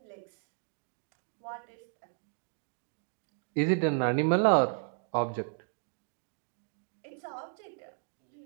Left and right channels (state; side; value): silent; left; digital silence